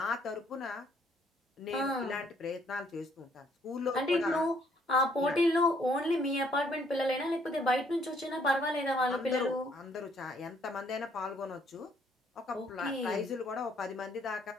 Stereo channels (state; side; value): normal; both; correlation 0.66